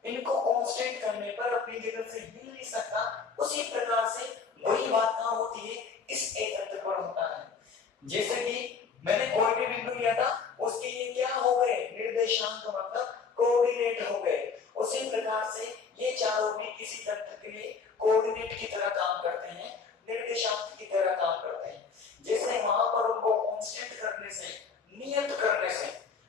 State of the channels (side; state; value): right; quieter; 5.4 dB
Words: इनको कांस्टेंट करने पर अपनी जगह से हिल नहीं सकता, उसी प्रकार से वही बात कहां होती है, इस एक तंत्र पर होता है। जैसे कि मैंने कोई भी बिंदु लिया था, उसके लिए क्या हो गए, निर्देशांक मतलब कोऑर्डिनेट हो गए। उसी प्रकार से ये चारों भी किसी तंत्र के लिए कोऑर्डिनेट की तरह काम करते हैं, निर्देशांक की तरह काम करते हैं। जैसे वहां पर उनको कांस्टेंट करने से, नियत करने से